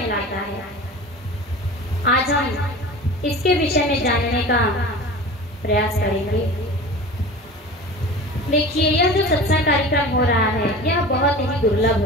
है। आज हम इसके विषय में जानने का प्रयास करेंगे। देखिए, यह जो सत्संग कार्यक्रम हो रहा है यह बहुत ही दुर्लभ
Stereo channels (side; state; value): both; normal; correlation 0.36